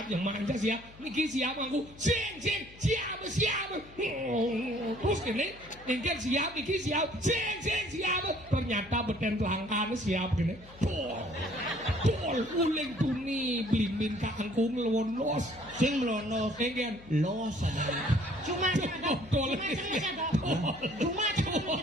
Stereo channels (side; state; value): left; noise; hum, 21 dB below the sound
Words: manja siap, niki siap aku, siap, terus kene, genggen siap, niki siap, ternyata beten langkah siap kene, tol, uling tuni, blimbing kangkung lewon los, Sing melono genggen, los adalah Cuma ada. Cuma